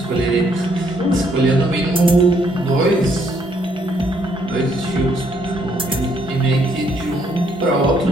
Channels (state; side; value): normal; both; correlation 0.69